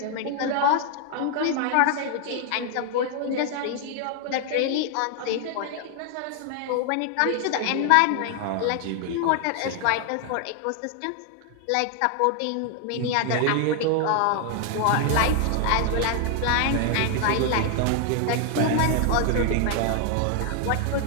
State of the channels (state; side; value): different; both; correlation 0.00